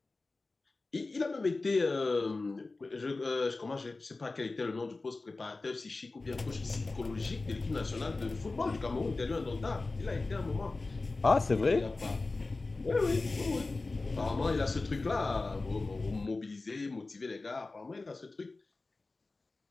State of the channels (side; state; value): right; quieter; 3.5 dB